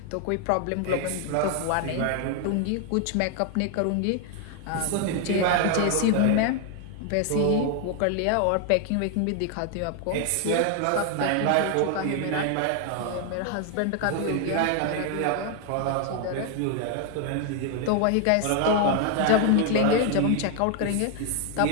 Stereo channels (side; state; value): both; different; correlation 0.00